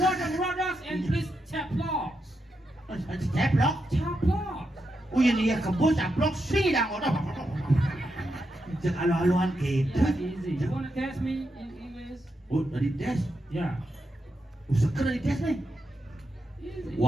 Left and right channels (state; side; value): normal; both; correlation 0.85